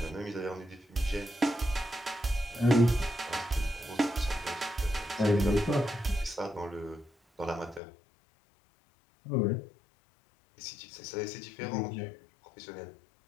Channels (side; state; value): right; drops out; at 7.8 s